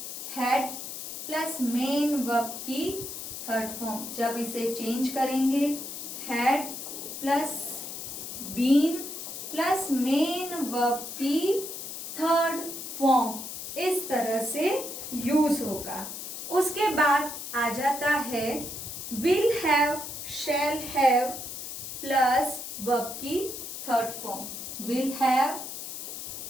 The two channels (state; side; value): noise; left; hiss, 8 dB below the sound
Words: हैड प्लस मेन वर्ब की थर्ड फॉर्म, जब इसे चेंज करेंगे had plus been plus main verb की थर्ड फॉर्म, इस तरह से यूज होगा। उसके बाद आ जाता है will have, shall have plus verb की third form. Will have,